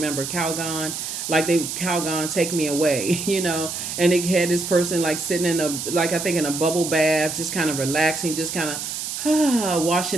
Calgon. Calgon, take me away, And it had this person like sitting in in a bubble bath, just kind of relaxing, just kind of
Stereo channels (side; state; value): right; noise; hiss, 5 dB below the sound